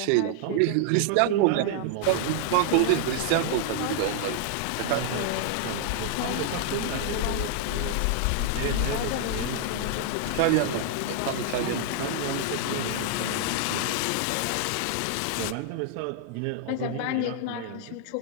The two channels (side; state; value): both; different; correlation 0.00